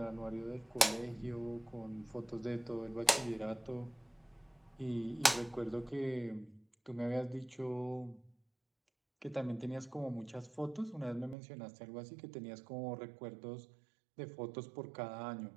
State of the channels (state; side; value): drops out; left; at 11.4 s